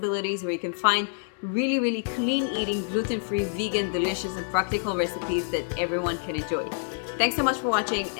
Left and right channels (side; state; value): right; silent; 60 dB below the other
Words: where you can find really clean eating, gluten-free, vegan, delicious, and practical recipes that everyone can enjoy. Thanks so much for watching,